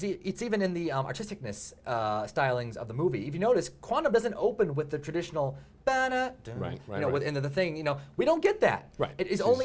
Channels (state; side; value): identical; both; correlation 1.00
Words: the artisticness stylings of the movie. If you notice, Quantum doesn't open with the traditional within the thing. We don't get that. Right. It is